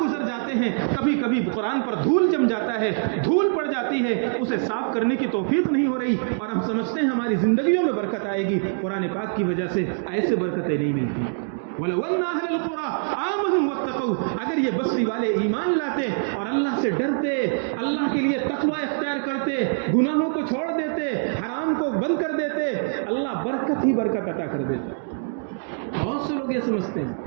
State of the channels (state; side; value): silent; left; digital silence